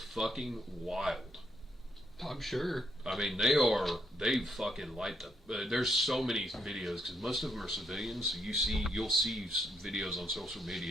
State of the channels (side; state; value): both; normal; correlation 0.74